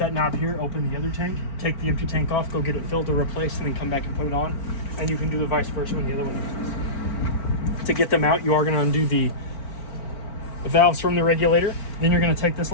knob here, open the other tank, take the empty tank off, go get it filled or replaced, and then come back and put it on. And you can do the vice versa when the other one empties. To get them out, you are going to undo the valves from the regulator. Then you're going to take this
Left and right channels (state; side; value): late; right; 4.4 ms